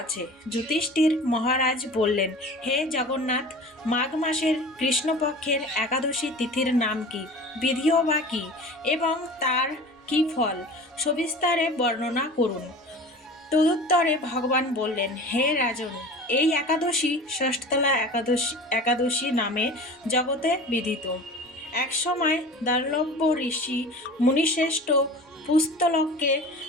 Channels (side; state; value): both; normal; correlation 0.38